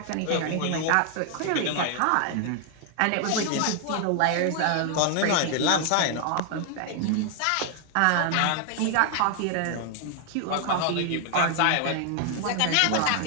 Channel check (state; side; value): different; both; correlation 0.00